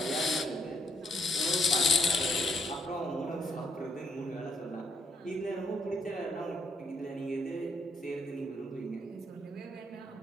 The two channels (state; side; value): normal; both; correlation 0.70